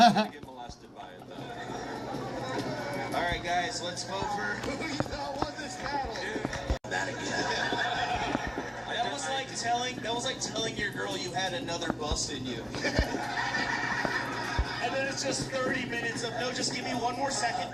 get molested by it, though. All right, guys, let's vote for who you thought won this battle. That again. That was like telling your girl you had another bust in you. And then it's just 30 minutes of, no, just give me one more second.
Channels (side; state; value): both; identical; correlation 1.00